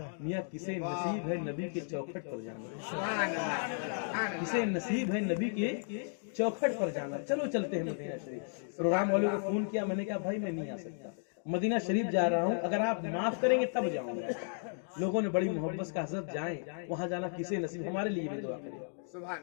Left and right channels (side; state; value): right; silent; digital silence